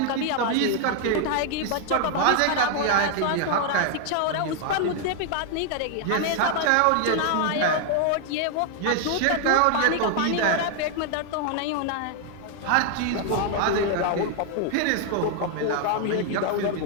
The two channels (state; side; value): different; both; correlation 0.00